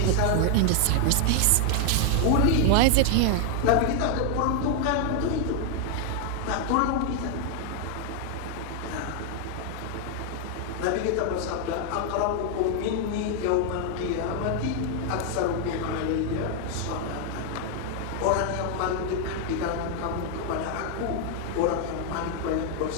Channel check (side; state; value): both; different; correlation 0.00